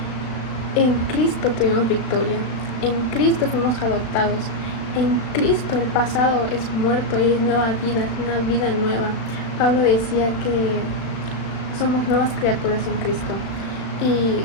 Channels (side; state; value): right; late; 36 ms